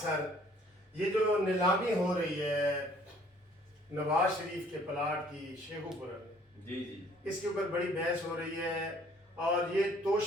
یہ جو نیلامی ہو رہی ہے نواز شریف کے پلاٹ کی شیخو پورہ میں، جی جی اس کے اوپر بڑی بحث ہو رہی ہے اور یہ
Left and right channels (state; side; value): normal; both; correlation 0.58